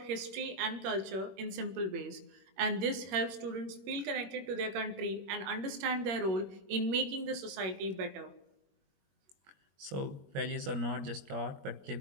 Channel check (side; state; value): left; late; 21 ms